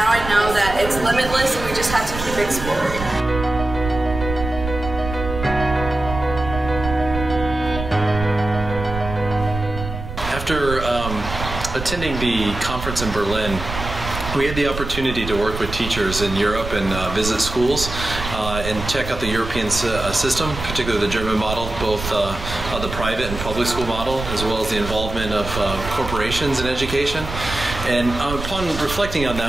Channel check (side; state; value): right; noise; rumble, 8 dB below the sound